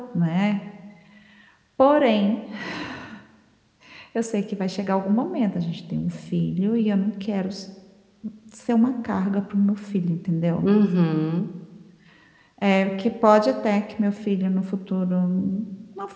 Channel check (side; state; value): both; identical; correlation 1.00